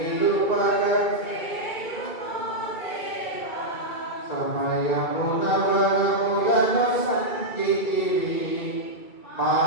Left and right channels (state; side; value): late; right; 2.2 ms